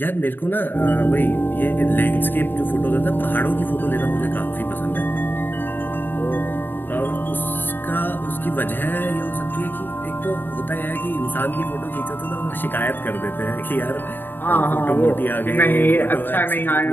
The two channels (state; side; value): late; right; 0.094 ms